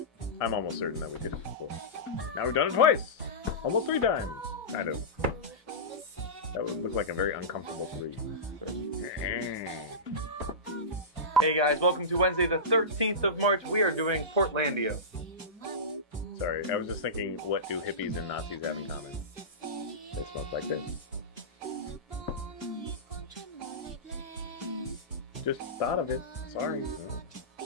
I'm almost certain that we did it before. Now we've done it twice! Almost 3 times! Kind of. That would look like a very uncomfortable 3. Hey guys, welcome to Wednesday the 13th of March. We are doing Portlandia. Sorry, I was just thinking, what do hippies and Nazis have in common? They smoke like this. Just thought of it. Sorry.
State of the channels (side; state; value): both; normal; correlation -0.18